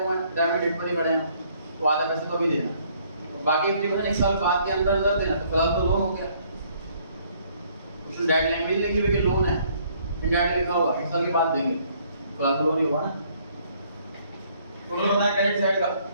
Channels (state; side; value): inverted; both; correlation -0.64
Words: हैं, रिटायरमेंट डेट पर ही खड़े हैं, तो आधा पैसे तो अभी देना और बाकी 50% एक साल बाद के अंदर अंदर देना। तो फिलहाल तो लोन हो गया। कुछ डायरेक्ट लैंग्वेज लिखी हुई कि लोन है, इनडायरेक्ट लिखा हुआ एक साल के बाद देंगे, फिलहाल तो लोन ही हुआ ना। टोटल बताएं क्रेडिट साइड का